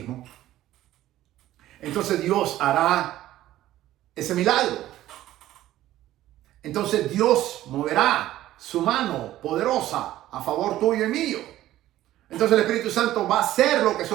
entonces Dios hará ese milagro. Entonces Dios moverá su mano poderosa a favor tuyo y mío. Entonces el Espíritu Santo va a hacer lo que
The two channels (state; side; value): quieter; left; 14.3 dB